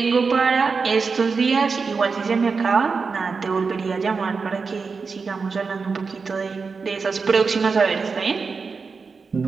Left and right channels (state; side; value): quieter; left; 4.9 dB